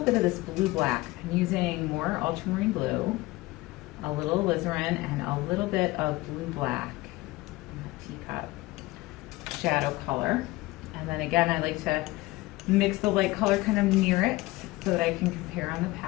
of this blue black. I'm using more ultramarine blue, a little alizarin, and a little bit of blue black in the teacup shadow color. And then again, I like to mix the light color kind of near it so that I can compare on the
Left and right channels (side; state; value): right; quieter; 20.1 dB